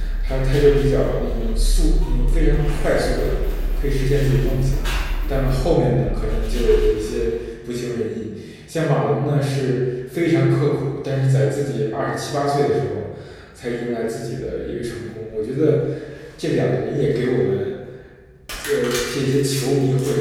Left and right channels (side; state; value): both; identical; correlation 1.00